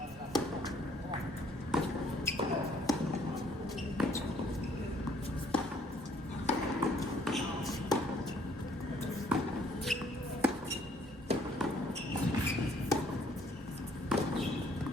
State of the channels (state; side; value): normal; both; correlation 0.62